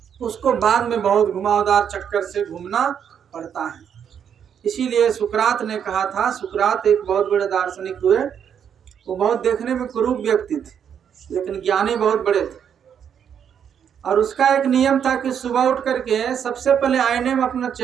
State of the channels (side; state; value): left; quieter; 8.2 dB